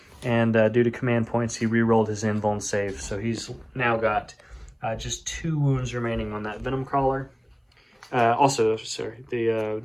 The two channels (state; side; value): identical; both; correlation 1.00